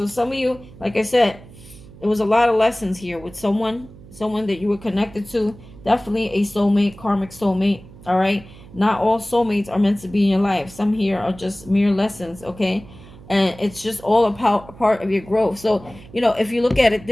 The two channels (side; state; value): right; noise; hum, 20 dB below the sound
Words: some of you, like I said, there was a lot of lessons here with someone that you were connected to. Definitely a soulmate, karmic soulmate, all right? Not all soulmates are meant to be in your life. Some here are just mere lessons, okay? And it's just all a part of your growth. So, if you look at it